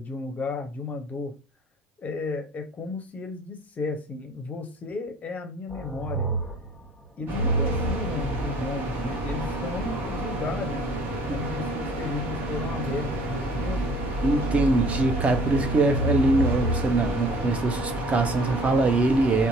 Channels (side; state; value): both; normal; correlation 0.54